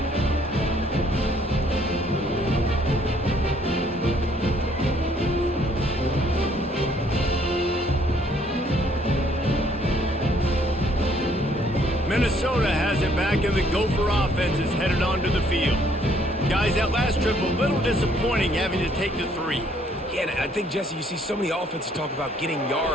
Minnesota has it back, and the Gopher offense is headed onto the field. Guys, that last trip a little disappointing having to take the 3. Yeah, and I think, Jesse, you see so many offenses talk about getting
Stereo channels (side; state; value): both; normal; correlation 0.64